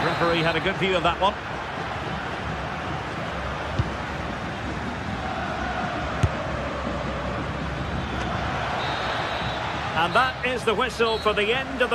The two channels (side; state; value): both; identical; correlation 1.00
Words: The referee had a good view of that one. And that is the whistle for the end of